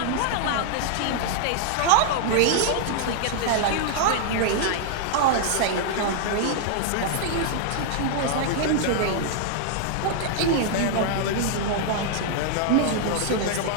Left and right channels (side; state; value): both; different; correlation -0.01